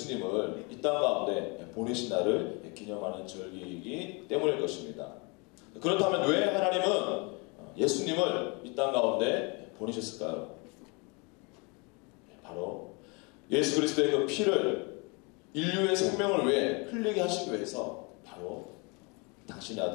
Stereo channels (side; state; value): right; quieter; 30.5 dB